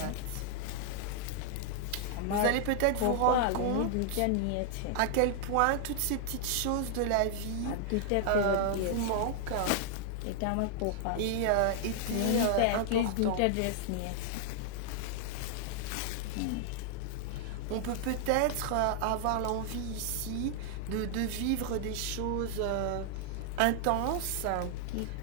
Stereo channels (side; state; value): both; different; correlation 0.00